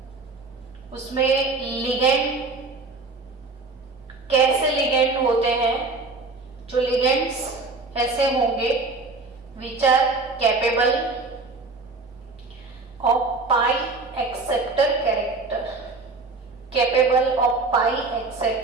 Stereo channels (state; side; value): quieter; left; 3.7 dB